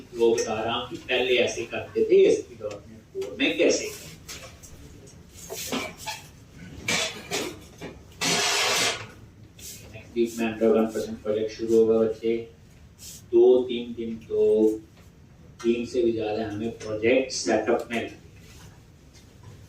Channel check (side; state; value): both; identical; correlation 1.00